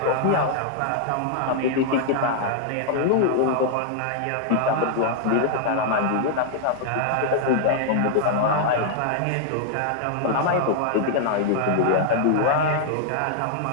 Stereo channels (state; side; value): different; both; correlation -0.01